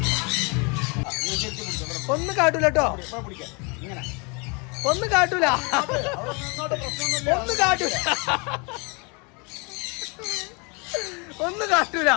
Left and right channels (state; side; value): quieter; right; 31.3 dB